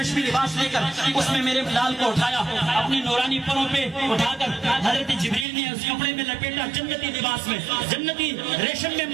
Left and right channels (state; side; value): drops out; left; at 5.5 s